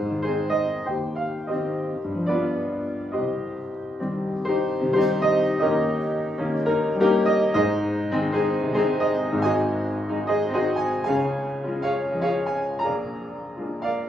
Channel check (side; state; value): both; normal; correlation 0.82